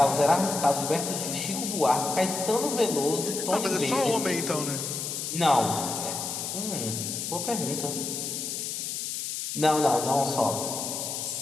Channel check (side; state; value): left; noise; hiss, 4 dB below the sound